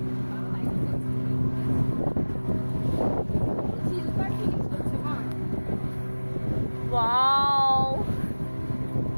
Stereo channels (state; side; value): inverted; both; correlation -1.00